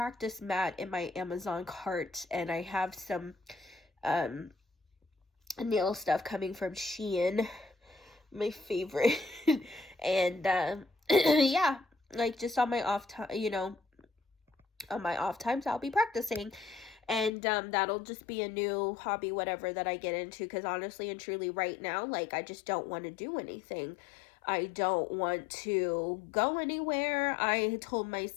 mat in my Amazon cart, and I have some nail stuff coming from Shein, my favorite. And yeah, like, just on my off time, you know, on my off times, I'll be practicing. And that'll just be a new hobby, whatever, that I get into, because honestly and truly right now, like, I just don't want to do anything. I don't want to go anywhere. I told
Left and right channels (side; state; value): right; drops out; at 17.3 s